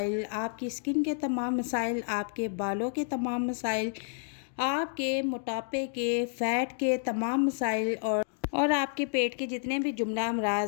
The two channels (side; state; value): right; silent; digital silence